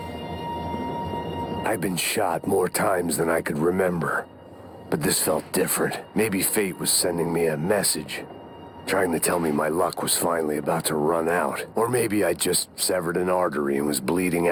I've been shot more times than I could remember. But this felt different. Maybe fate was sending me a message, trying to tell me my luck was finally about to run out. Or maybe I just severed an artery and was bleeding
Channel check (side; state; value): both; identical; correlation 1.00